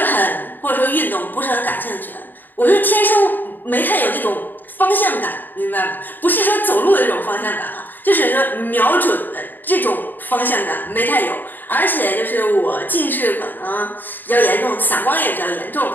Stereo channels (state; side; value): late; right; 0.090 ms